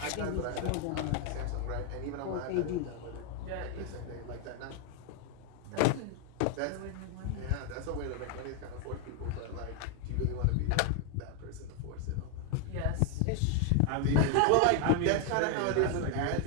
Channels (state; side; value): different; both; correlation 0.01